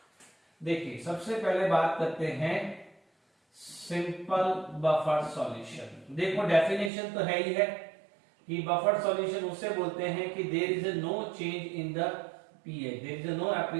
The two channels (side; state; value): left; drops out; at 6.9 s